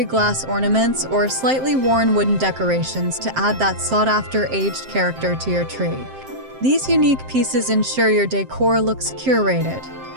glass ornaments or slightly worn wooden decorations to add that sought-after aged character to your tree. These unique pieces ensure your decor looks curated,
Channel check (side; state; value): left; late; 7.7 ms